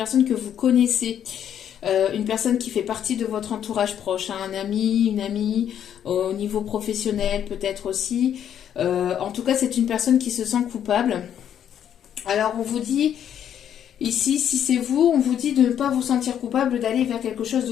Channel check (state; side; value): quieter; right; 9.5 dB